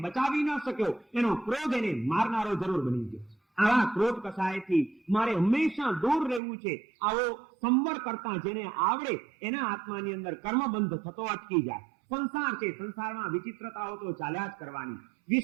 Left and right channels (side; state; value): left; drops out; at 6.4 s